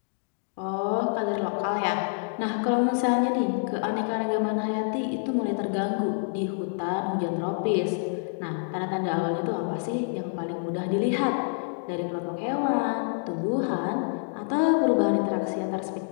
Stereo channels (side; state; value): right; silent; digital silence